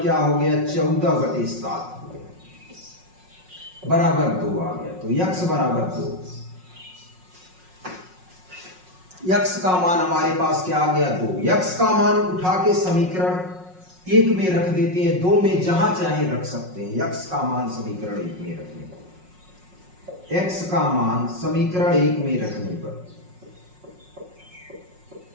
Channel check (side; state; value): left; late; 5.5 ms